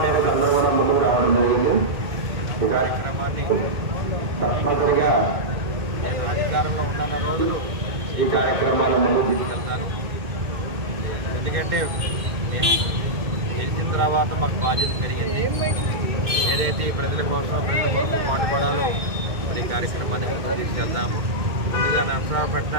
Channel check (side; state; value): left; late; 2.1 ms